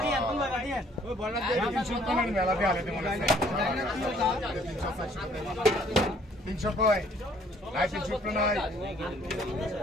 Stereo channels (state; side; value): normal; both; correlation 0.61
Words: আর তুই লাগা দিয়ে ওই বড় দিয়ে 300 কয় মেলা দিয়ে আলে মনে আছে 300 কয় নাই 300 নাই